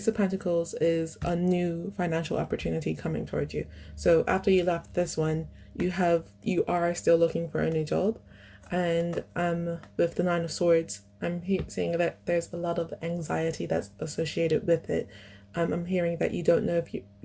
of Pentacles is a new financial opportunity coming towards you. So after you left this one, you are still looking for a new job. And with the Nine of Swords, I'm seeing that there's a lot of anxiety that's associated with it. I'm hearing that you don't know if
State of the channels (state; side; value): identical; both; correlation 1.00